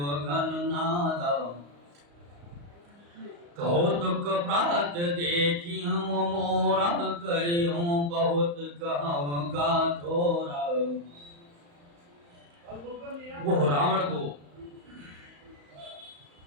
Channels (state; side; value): late; left; 35 ms